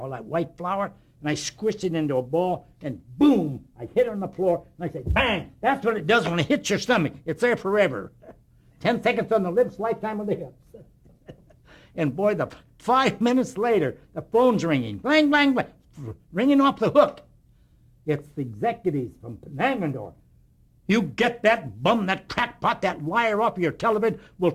that white flour. And I squished it into a ball, and boom, I hit it on the floor, and I said, bang, that's what it does when it hits your stomach. It's there forever. 10 seconds on the lips, lifetime on the hips. And boy, 5 minutes later, the phone's ringing, blang, blang, blang, ringing off the hook. It's the executives from Langendorf. You get that bum, that crackpot, that liar off of your television, we're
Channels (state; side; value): identical; both; correlation 1.00